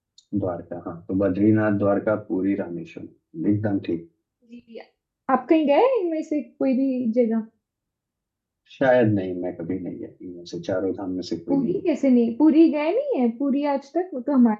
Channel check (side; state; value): both; identical; correlation 1.00